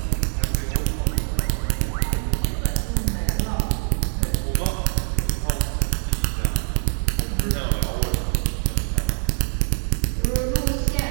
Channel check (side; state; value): left; silent; digital silence